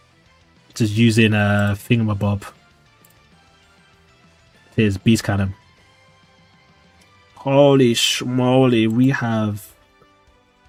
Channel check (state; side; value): identical; both; correlation 1.00